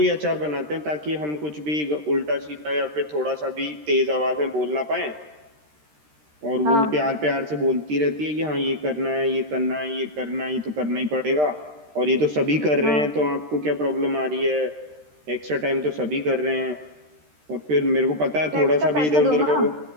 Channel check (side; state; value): left; late; 13 ms